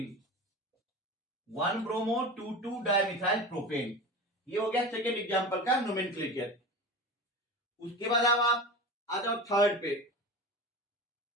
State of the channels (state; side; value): normal; both; correlation 0.30